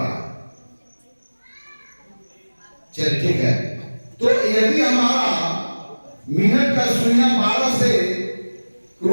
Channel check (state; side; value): inverted; both; correlation -1.00